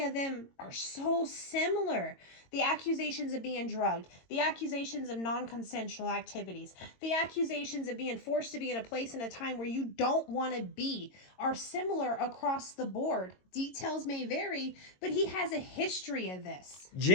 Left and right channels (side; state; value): right; late; 22 ms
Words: of them are so similar. The accusations of being drugged, the accusations of non-consensual activities, the accusations of being forced to be in a place and a time where you don't want to be are similar across the board. Details may vary, but he has a history of this.